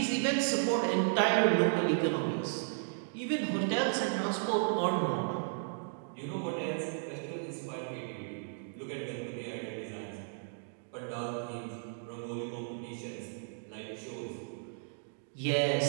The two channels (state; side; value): silent; left; digital silence